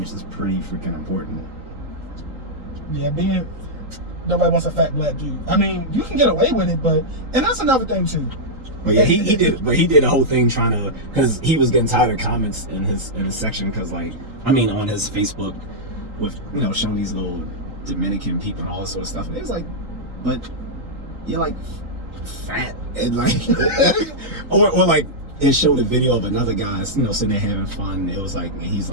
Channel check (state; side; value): late; left; 3.8 ms